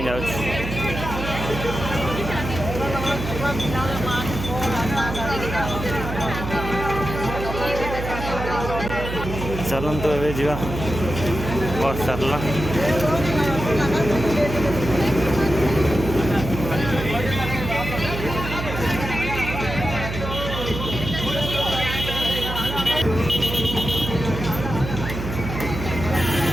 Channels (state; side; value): noise; right; hum, 6 dB below the sound